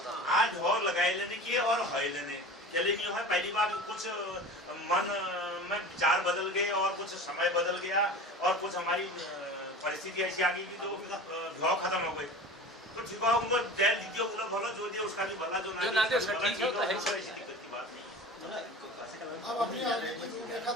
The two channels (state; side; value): normal; both; correlation 0.36